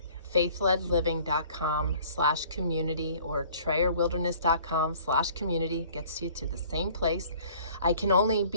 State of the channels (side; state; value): both; inverted; correlation -0.53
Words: faithledliving.com/community or trayerwilderness.com/community. Gets you to the same place. I can only